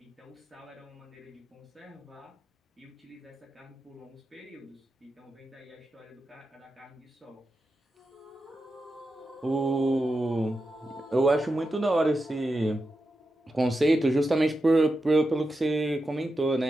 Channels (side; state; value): both; normal; correlation 0.89